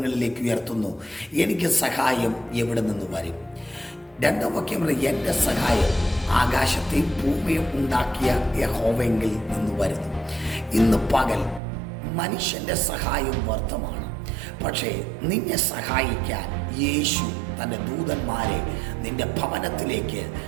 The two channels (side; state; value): left; drops out; at 11.6 s